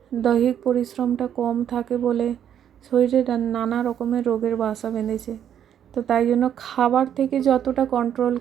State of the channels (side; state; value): left; quieter; 9.5 dB